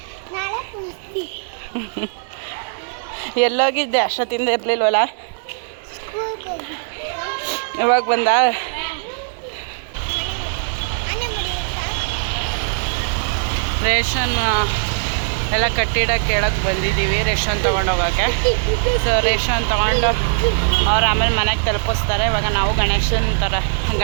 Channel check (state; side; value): silent; left; 62 dB below the other